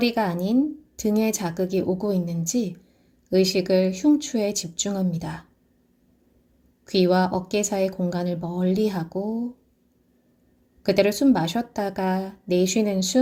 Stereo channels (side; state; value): both; identical; correlation 1.00